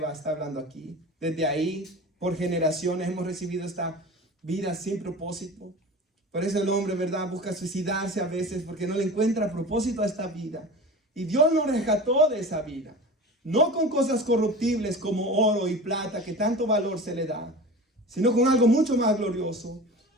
está hablando aquí. Desde ahí, por generaciones, hemos recibido esta vida sin propósito. Por eso el hombre, ¿verdad?, busca suicidarse a veces porque no le encuentra propósito a esta vida. Y Dios nos rescató de esa vida. No con cosas corruptibles como oro y plata, que tanto valor se le da, sino con algo mucho más glorioso.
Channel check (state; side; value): normal; both; correlation 0.35